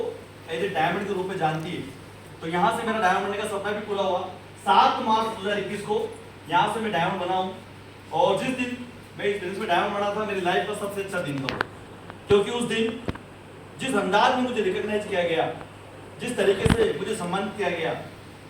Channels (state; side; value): identical; both; correlation 1.00